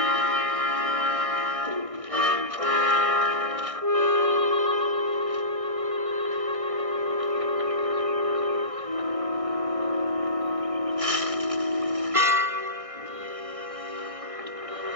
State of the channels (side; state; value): left; late; 1.6 ms